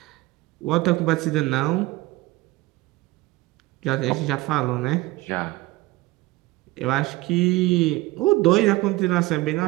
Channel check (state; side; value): quieter; left; 19.6 dB